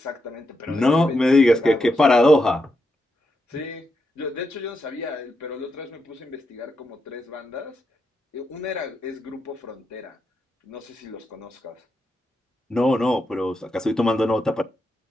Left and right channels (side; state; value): both; normal; correlation 0.84